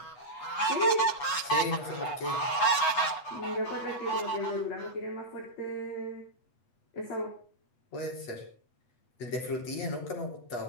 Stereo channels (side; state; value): right; late; 8.0 ms